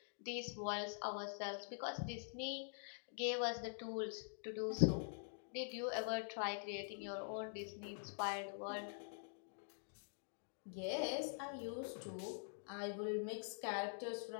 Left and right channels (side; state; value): right; silent; digital silence